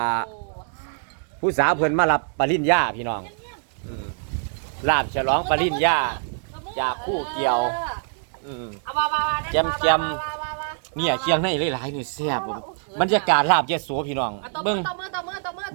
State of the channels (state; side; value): silent; left; digital silence